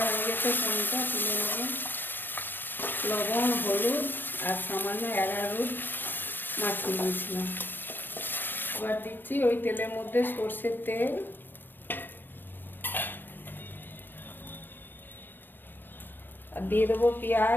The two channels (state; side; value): late; right; 0.095 ms